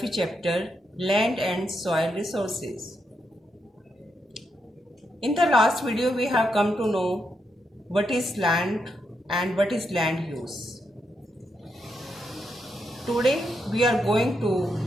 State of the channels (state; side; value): normal; both; correlation 0.82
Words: chapter Land and Soil Resources. In the last video we have come to know what is land and what is land use. Today we are going to